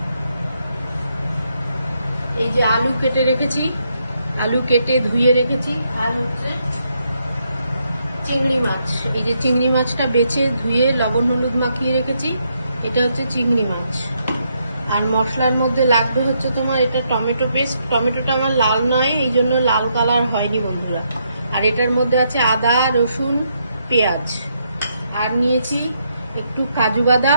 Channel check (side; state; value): both; inverted; correlation -0.77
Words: এই যে আলু কেটে রেখেছি, আলু কেটে ধুয়ে রেখেছি। আর হচ্ছে চিংড়ি মাছ, এই যে চিংড়ি মাছটা বেছে ধুয়ে লবণ হলুদ মাখিয়ে রেখেছি। এটা হচ্ছে চিংড়ি মাছ। আর মশলার মধ্যে লাগবে হচ্ছে তোমার এটা টমেটো পেস্ট। টমেটোটা আমার লাল নয়, এই জন্য লাল কালার হয়নি বন্ধুরা। আর এটার মধ্যে আছে আদা, রসুন, পেঁয়াজ। আর নিয়েছি একটু কাজু